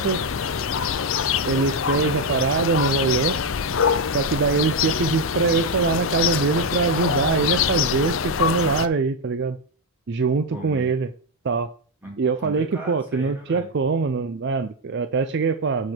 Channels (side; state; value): both; normal; correlation 0.04